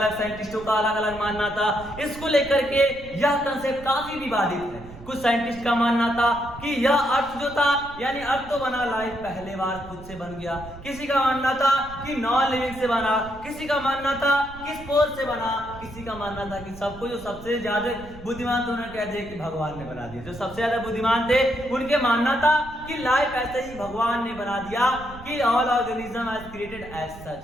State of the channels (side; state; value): right; noise; rumble, 17 dB below the sound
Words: साइंटिस्टों का अलग अलग मानना था। इसको लेकर के यह कंसेप्ट काफी विवादित है। कुछ साइंटिस्ट का मानना था कि यह अर्थ जो था, यानी अर्थ तो बना, लाइफ पहले बार खुद से बन गया। किसी का मानना था कि नॉन लिविंग से बना, किसी का मानना था कि स्पोर से बना, किसी का मानना था कि सबको जो सबसे ज्यादा बुद्धिमान थे उन्होंने कह दिया कि भगवान ने बना दिया। जो सबसे ज्यादा बुद्धिमान थे उनके मानना था कि लाइफ ऐसे ही भगवान ने बना दिया, कि all organism has created as such,